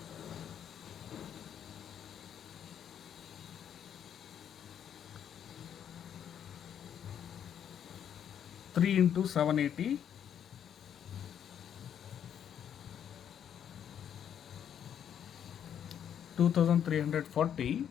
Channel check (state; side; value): quieter; right; 9.1 dB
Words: 3 into 780 2340